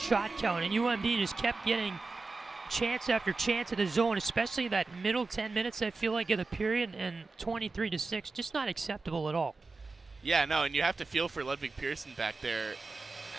count, and UMD just kept getting chance after chance in the zone, especially that middle 10 minutes, I feel like, of the period, and 23-6, just not acceptable at all. Yeah, no, and you have to feel for Ludwig Pearson back there.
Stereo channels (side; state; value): left; quieter; 3.9 dB